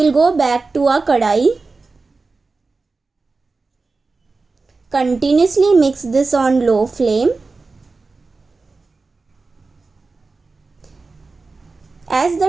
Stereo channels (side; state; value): left; quieter; 3.9 dB